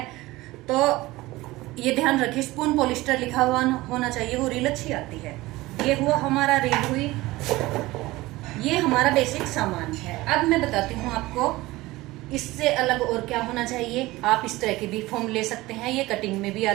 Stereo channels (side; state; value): left; quieter; 19.2 dB